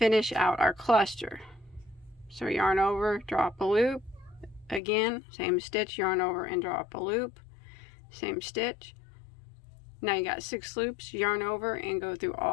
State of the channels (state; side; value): drops out; right; at 4.8 s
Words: out our cluster. So yarn over, draw up a loop, again same stitch, yarn over and draw up a loop, same stitch. Now you got 6 loops, yarn over and go through